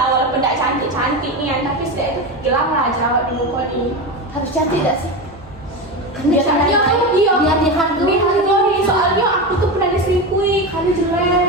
walaupun tidak cantik-cantik nih tapi sudah itu hilang lah jerawat di muka ini. harus cantik gak sih? Biasanya iya biar dihargai. dihargai soalnya aku tuh pernah diselingkuhi karena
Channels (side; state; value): both; normal; correlation 0.20